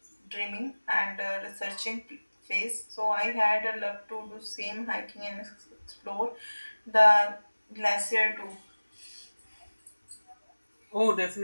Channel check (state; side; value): inverted; both; correlation -1.00